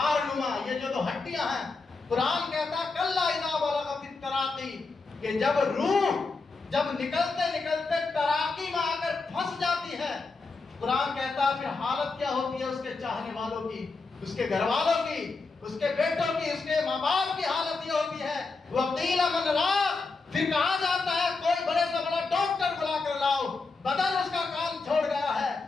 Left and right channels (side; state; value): right; quieter; 4.0 dB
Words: نما، یہ جو دو ہڈیاں ہیں، قرآن کہتا ہے کلا اذا بلغت التراقی، کہ جب روح جب نکلتے نکلتے تراقی میں آ کر پھنس جاتی ہے، قرآن کہتا ہے پھر حالت کیا ہوتی ہے اس کے چاہنے والوں کی، اس کے گھر والوں کی، اس کے بیٹوں کی، اس کے ماں باپ کی حالت یہ ہوتی ہے وَقِيلَ مَنْ رَاقٍ، پھر کہا جاتا ہے کوئی بڑے سے بڑا ڈاکٹر بلا کر لاؤ، بدن اس کا کام چھوڑ گیا ہے،